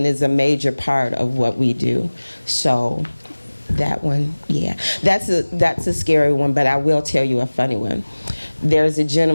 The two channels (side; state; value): both; inverted; correlation -1.00